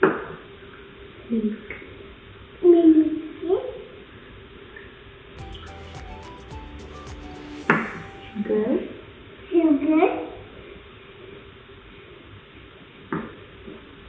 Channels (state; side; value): identical; both; correlation 1.00